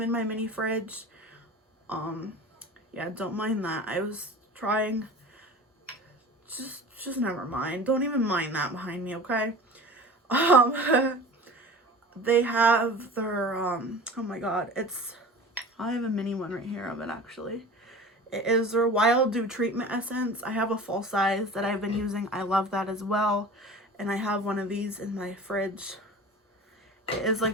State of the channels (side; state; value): both; normal; correlation 0.38